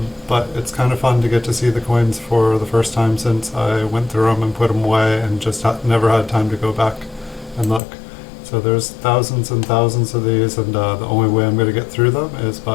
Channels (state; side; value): drops out; right; at 7.8 s